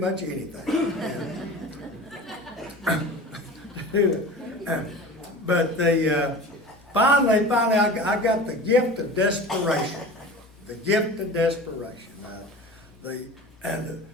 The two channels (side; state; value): left; noise; hum, 27 dB below the sound